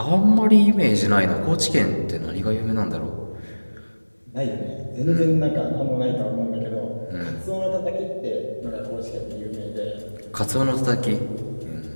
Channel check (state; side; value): inverted; both; correlation -1.00